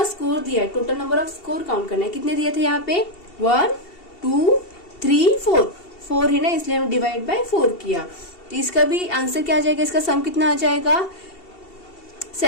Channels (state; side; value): late; right; 2.7 ms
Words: स्कोर दिया है, total number off score count करना है। कितने दिए थे यहाँ पे 1 2 3 4 4 है ना, इसलिए हम डिवाइड बाय 4 किया। तो इसका भी आंसर क्या आ जाएगा, इसका सम कितना आ जाएगा